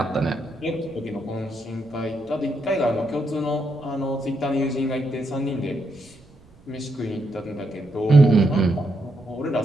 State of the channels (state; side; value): noise; right; rumble, 27 dB below the sound